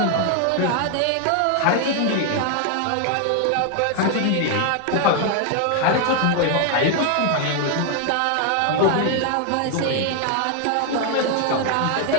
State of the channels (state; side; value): different; both; correlation 0.00